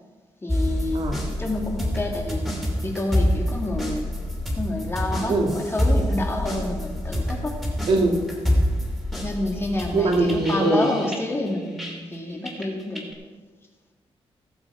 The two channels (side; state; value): both; normal; correlation 0.83